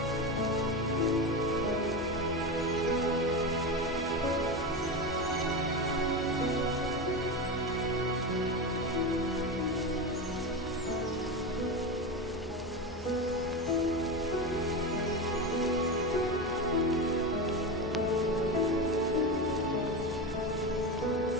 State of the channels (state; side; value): normal; both; correlation 0.19